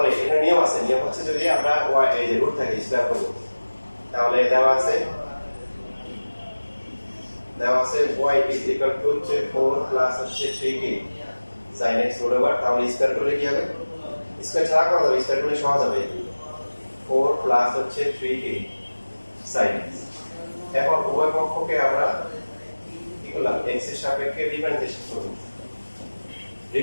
এখানে নিয়ম আছে, নিয়ম হচ্ছে যদি আমরা y এই যে রুট থাকে স্কয়ার করব, তাহলে দেওয়া আছে y is equal to 4 plus হচ্ছে 3k sin x root over, তাহলে স্কয়ার করলে কি হবে? স্কয়ার ছাড়া করা যাবে, স্কয়ার করলে সহজ হবে। 4 প্লাস হচ্ছে 3k sin x। এখন উভয় পক্ষকে আমরা কি করলাম? x এর সাপেক্ষে ডিফারেন্সিয়েশন করব।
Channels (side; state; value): both; inverted; correlation -1.00